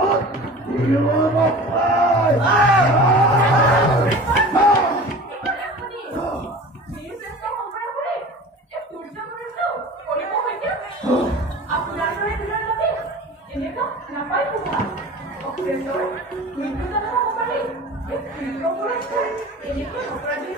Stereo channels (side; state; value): both; normal; correlation 0.39